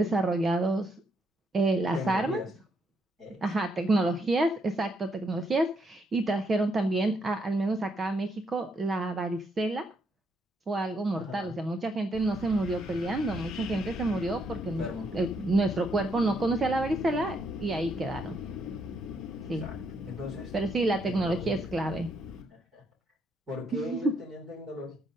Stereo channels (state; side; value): normal; both; correlation 0.75